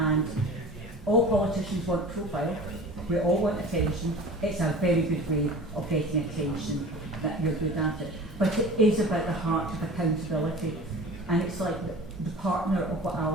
all politicians want profile, we all want attention. It's a very good way of getting attention that you're good at it. But it is about the heart of accountability. And it's like the partner of what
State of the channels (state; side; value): normal; both; correlation 0.39